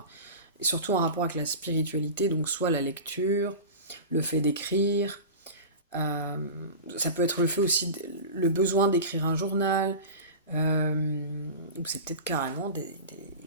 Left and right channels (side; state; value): both; inverted; correlation -0.31